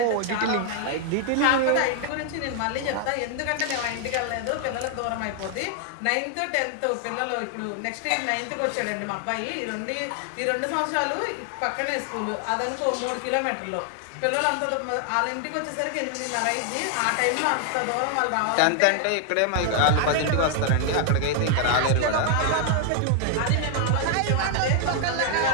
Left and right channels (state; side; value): different; both; correlation 0.00